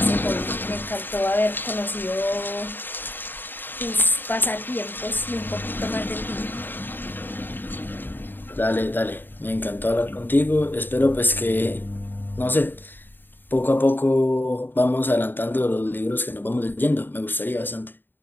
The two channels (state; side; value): late; right; 0.094 ms